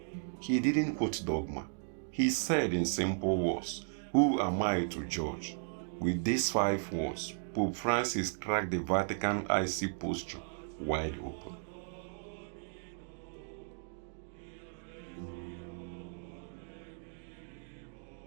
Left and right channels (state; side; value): silent; left; digital silence